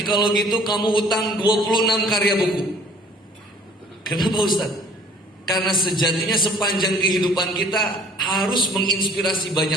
kalau gitu kamu utang 26 karya buku. Kenapa Ustaz? Karena sejatinya sepanjang kehidupan kita harus menginspirasi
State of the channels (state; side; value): normal; both; correlation 0.53